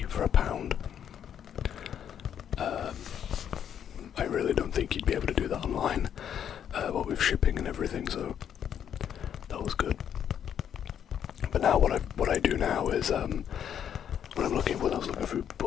for £1. I really don't think you'd be able to do that online, what with shipping and everything, so that was good. But now what I do now is when I was looking through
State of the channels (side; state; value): right; quieter; 9.1 dB